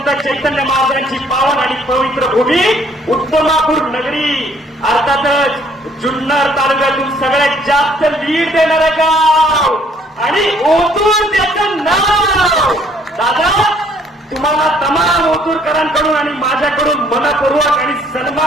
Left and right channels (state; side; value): normal; both; correlation 0.62